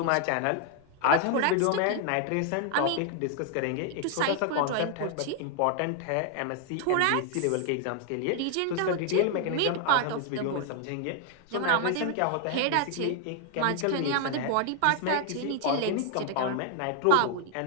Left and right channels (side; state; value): both; different; correlation 0.00